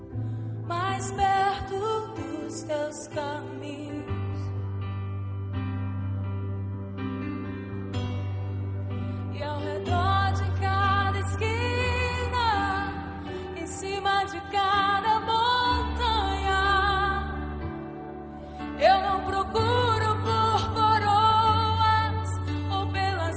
mais perto dos teus caminhos. E ao redor de cada esquina, em cima de cada montanha, eu não procuro por coroas ou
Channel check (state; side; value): identical; both; correlation 1.00